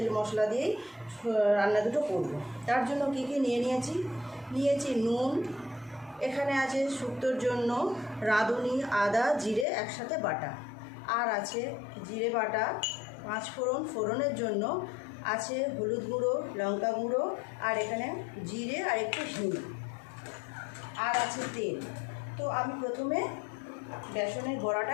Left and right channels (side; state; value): right; drops out; at 9.7 s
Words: মশলা দিয়েই রান্না দুটো করবো। তার জন্য কি নিয়েছি নুন, এখানে আছে শুক্তোর জন্য রাঁধুনি, আদা, জিরে একসাথে বাটা, আর আছে জিরে বাটা, 5 ফোড়নের জন্য আছে হলুদ গুঁড়ো, লঙ্কা গুঁড়ো, আর এখানে জিরে আর একটু হিং, আর আছে তেল। তো আমি প্রথমে বেসনের